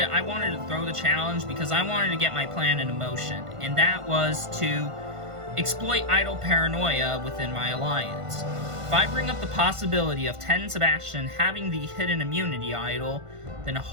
I wanted to throw the challenge because I wanted to get my plan into motion, and that was to exploit idol paranoia within my alliance. If I bring up the possibility of Ted and Sebastian having the hidden immunity idol, then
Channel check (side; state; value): left; late; 1.5 ms